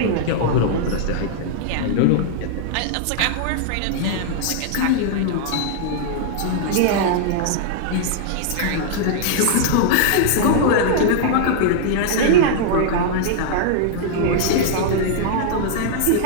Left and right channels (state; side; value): different; both; correlation -0.01